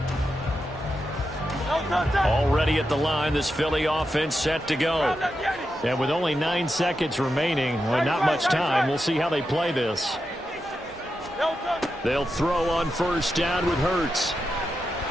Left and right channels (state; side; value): normal; both; correlation 0.88